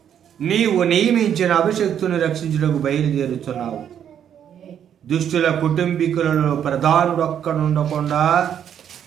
నీవు నియమించిన అభిషక్తుని రక్షించుటకు బయలుదేరుచున్నావు. దుష్టుల కుటుంబీకులలో ప్రధానుడొక్కడుండకుండా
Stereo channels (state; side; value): quieter; left; 9.2 dB